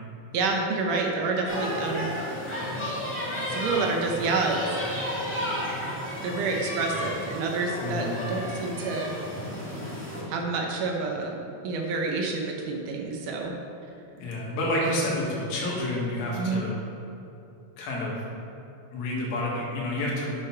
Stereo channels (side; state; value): both; normal; correlation 0.07